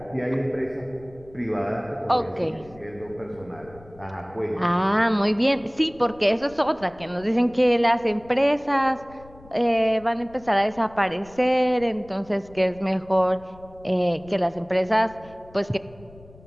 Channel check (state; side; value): noise; left; rumble, 23 dB below the sound